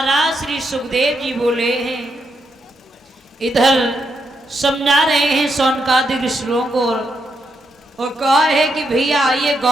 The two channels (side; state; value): both; normal; correlation 0.80